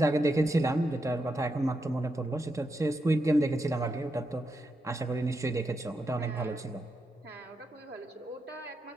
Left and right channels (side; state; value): both; normal; correlation 0.84